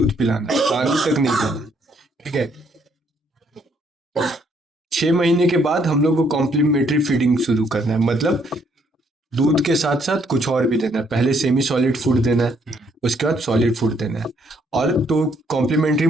पिलाना, पानी तक नहीं देना। ठीक है, 6 महीने के बाद हम लोग को कॉम्प्लीमेंट्री फीडिंग शुरू करना है, मतलब दूध के साथ साथ कुछ और भी देना है। पहले सेमी सॉलिड फूड देना है, उसके बाद सॉलिड फूड देना है। और तो कॉम्प्लीमेंट्री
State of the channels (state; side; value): normal; both; correlation 0.69